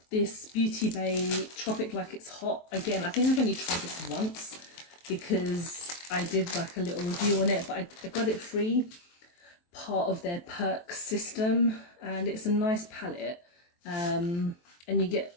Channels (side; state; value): right; late; 23 ms